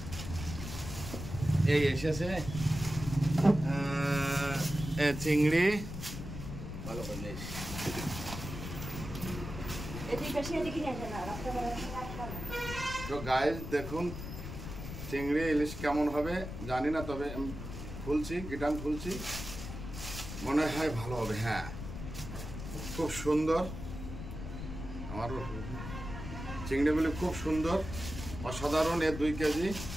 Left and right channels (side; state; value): left; noise; rumble, 8 dB below the sound